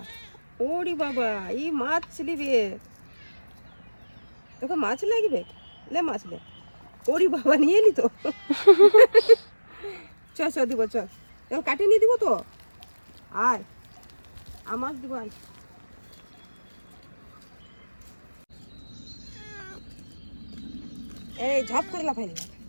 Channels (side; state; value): both; inverted; correlation -1.00